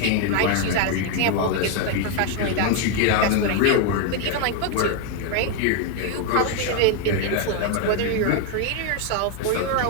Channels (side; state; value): both; different; correlation 0.01